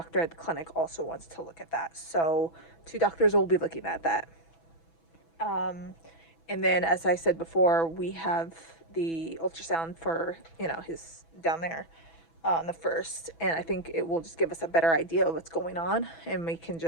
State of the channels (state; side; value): late; right; 6.1 ms